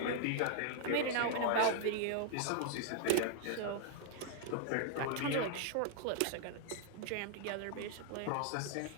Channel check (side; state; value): both; different; correlation -0.01